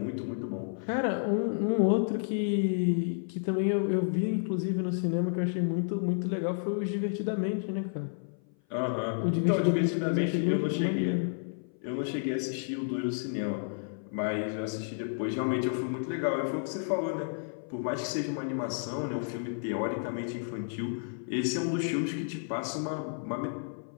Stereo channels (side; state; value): right; silent; 56 dB below the other